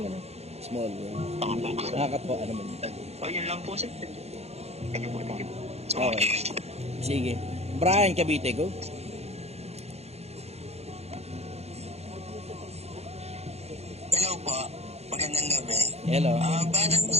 ano? Small world. Nakakatuwa naman. Yun lang po sir. Thank you po. Okay. Sige. Brian Cavite, go. Hello po. Magandang gabi. Hello. Batang po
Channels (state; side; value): late; left; 0.31 ms